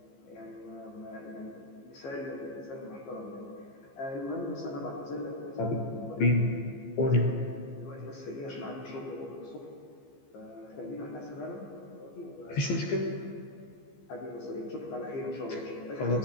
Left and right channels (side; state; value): right; late; 15 ms